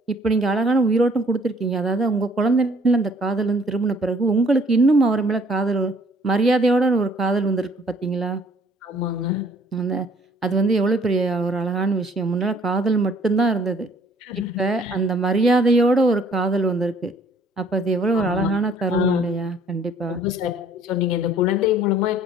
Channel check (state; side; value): normal; both; correlation 0.59